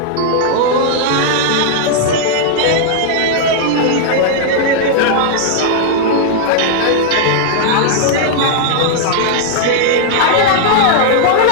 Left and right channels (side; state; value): both; different; correlation -0.01